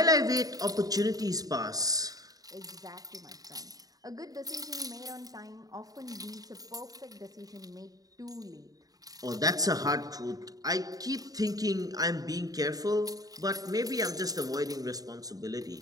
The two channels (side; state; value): left; late; 0.18 ms